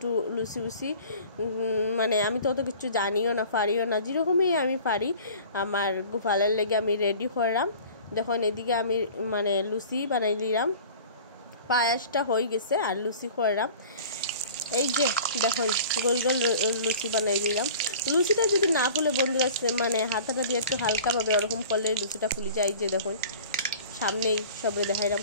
লুচি উচি, মানে আমি তো অত কিছু জানিও না, পারিও না, যেরকমই আমি পারি আমার গোপালের লেগে আমি রেডি করলাম। দেখুন এদিকে আমি মানে লুচি বানাই দিলাম, পায়াসটা হয়ে গেছে আর লুচি করলাম। এই যে দেখুন গোল গোল লুচি বানাই দিলাম। লুচিটা যদি না ফুলে বন্ধুরা, মানে হাতাটা দিয়ে একটু হালকাভাবে ওরকম করলে লুচিটা ফুলে যায়। যে দেখুন সামনেই সবরে দেখাইলাম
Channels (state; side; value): inverted; both; correlation -0.43